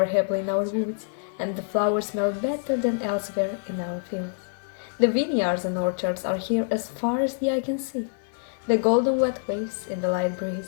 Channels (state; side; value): silent; right; 61 dB below the other